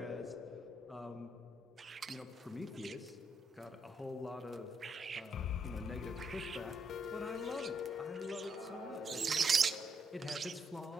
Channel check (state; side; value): normal; both; correlation 0.76